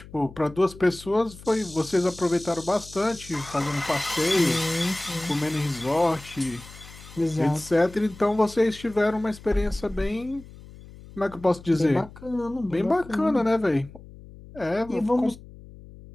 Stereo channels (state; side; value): noise; left; hum, 18 dB below the sound